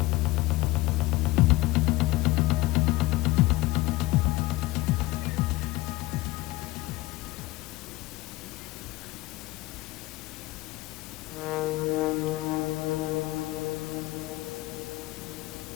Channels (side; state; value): right; quieter; 19.6 dB